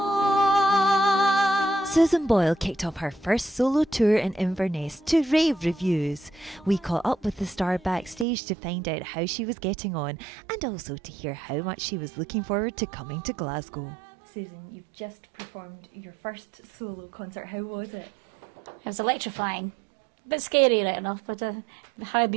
Susan Boyle kicked off her first solo tour in Inverness to rave reviews. We caught up with the star backstage to find out how she was getting on and also to hear how much she was looking forward to coming to Glasgow. Susan, you've just performed your first solo concert. How was it? It was electrifying. A bit scary right enough, but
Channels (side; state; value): left; drops out; at 8.2 s